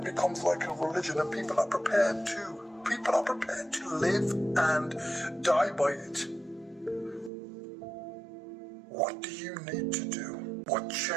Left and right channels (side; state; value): left; drops out; at 7.3 s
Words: becomes like a religion, and people are prepared to live and die by it. What do you need to do? What